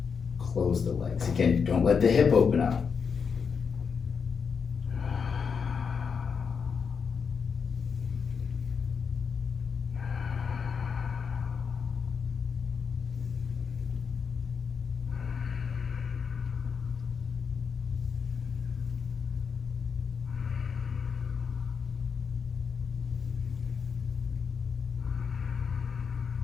close the legs. Again, don't let the hip open up.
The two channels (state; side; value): quieter; right; 6.1 dB